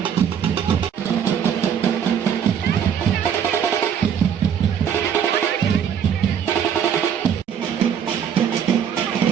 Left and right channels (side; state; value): left; quieter; 8.3 dB